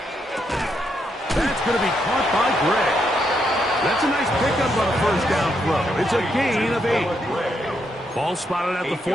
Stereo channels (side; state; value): both; normal; correlation 0.79